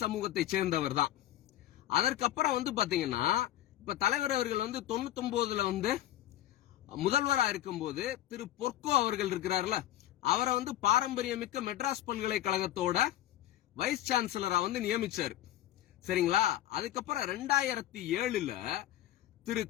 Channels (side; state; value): right; quieter; 13.7 dB